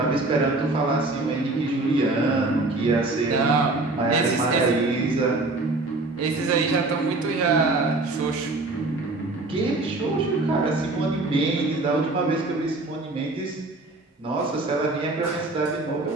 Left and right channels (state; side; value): quieter; left; 3.1 dB